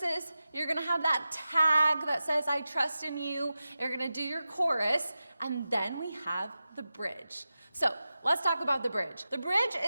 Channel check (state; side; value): inverted; both; correlation -0.92